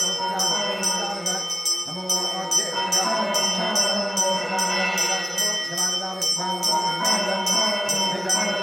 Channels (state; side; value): identical; both; correlation 1.00